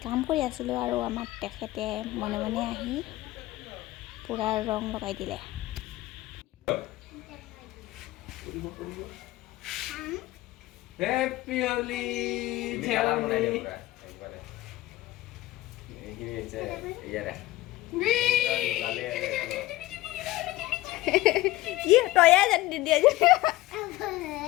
কাম কৰি আছিলোঁ আৰু আমাৰ তেখেতে মনে মনে আহি পূৰা ৰং লগাই দিলে। হেপী হোলী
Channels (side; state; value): right; quieter; 17.5 dB